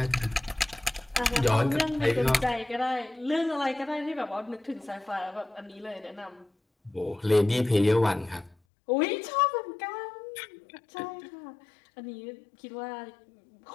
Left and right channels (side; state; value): right; drops out; at 8.6 s